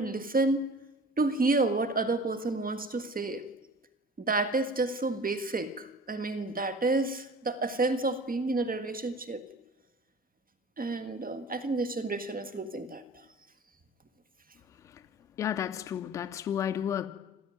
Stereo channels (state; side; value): normal; both; correlation 0.42